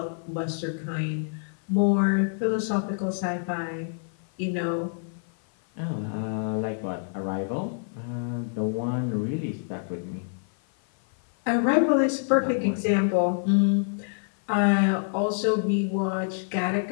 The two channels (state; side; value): silent; right; 56 dB below the other